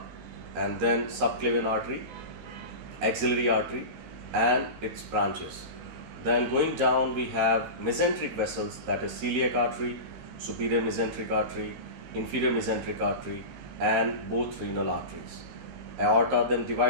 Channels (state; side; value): late; left; 15 ms